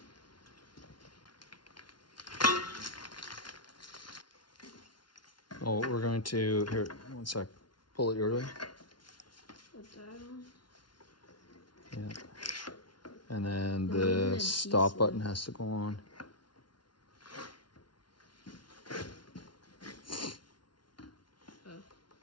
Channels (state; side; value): late; right; 0.71 ms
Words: Oh, we're going to, here, one sec, pull it your way. What's that on? Yeah. And then the stop button has to go on.